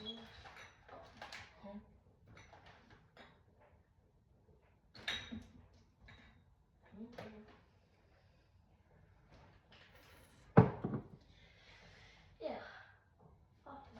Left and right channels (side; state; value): both; identical; correlation 1.00